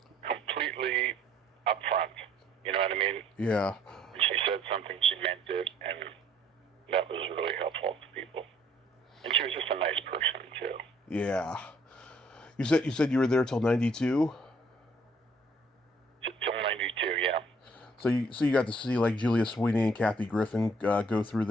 completely upfront. You know what I mean? Yeah. When she said something, she meant it, and that was really helpful to people. And she was just a nice person too. Yeah. You said you were there till 92? Till 92, yeah. So you got to see like Julia Sweeney and Kathy Griffin go through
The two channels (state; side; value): normal; both; correlation 0.62